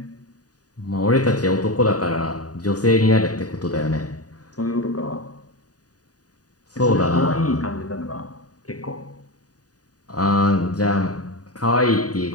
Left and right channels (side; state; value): right; late; 0.68 ms